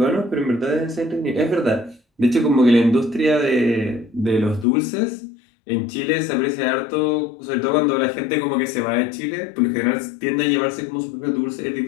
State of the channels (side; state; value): right; drops out; at 4.7 s